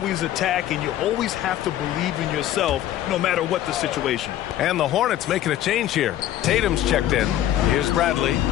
attack, and you always have to believe in yourself no matter what the situation. And the Hornets making a change here. Tatum's checked in. Here's Bradley.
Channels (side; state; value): right; quieter; 12.5 dB